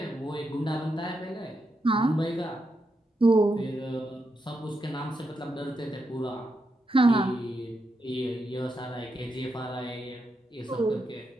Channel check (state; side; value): normal; both; correlation 0.84